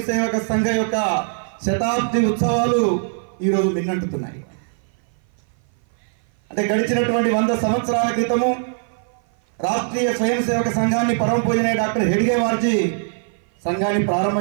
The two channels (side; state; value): left; silent; 56 dB below the other